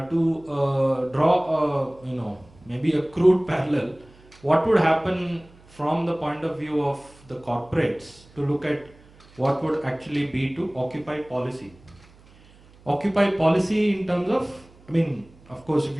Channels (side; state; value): right; noise; hum, 26 dB below the sound